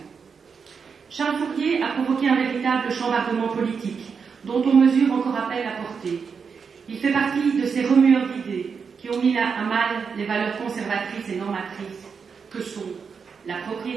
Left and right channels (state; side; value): quieter; left; 5.9 dB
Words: Charles Fourier a provoqué un véritable chambardement politique dont on mesure encore à peine la portée. Il fait partie de ces remueurs d'idées qui ont mis à mal les valeurs conservatrices et normatrices que sont la